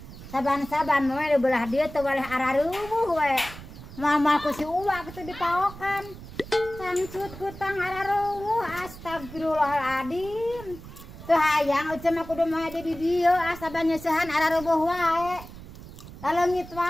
Saban-saban we belah dia teu boleh araruwuh we. Mama ku si Uwa kitu dipaokan. Sangcut kutang araruwuh astagfirullahaladzim. Teu hayang uceuk mah kudu moe di dieu asaban nyeusehan araruwuh wae. Daleungit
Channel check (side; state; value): right; noise; rumble, 15 dB below the sound